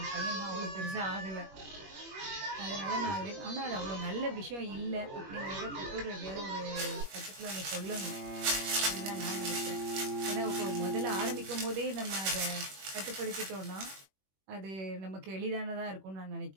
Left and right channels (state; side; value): late; left; 21 ms